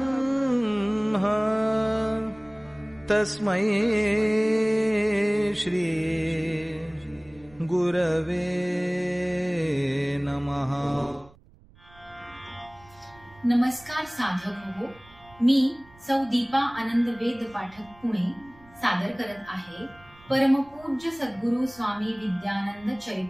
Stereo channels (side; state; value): right; noise; rumble, 26 dB below the sound